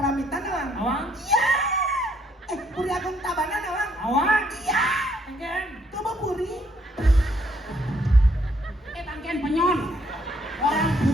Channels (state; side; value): normal; both; correlation 0.69